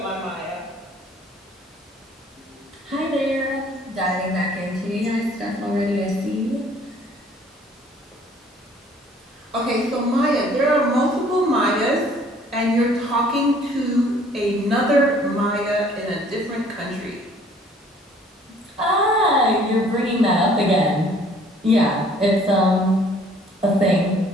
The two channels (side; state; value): both; normal; correlation 0.56